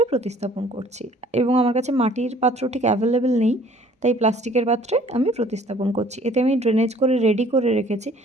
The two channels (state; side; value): normal; both; correlation 0.55